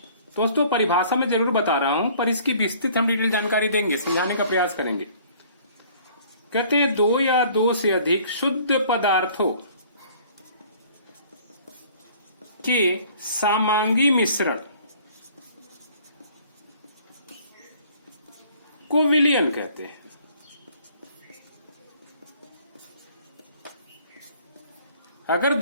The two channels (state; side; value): inverted; both; correlation -0.54